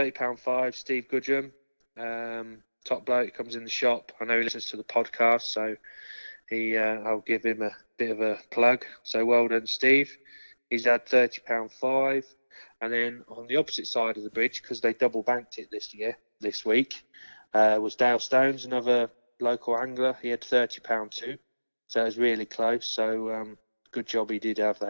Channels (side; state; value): both; inverted; correlation -1.00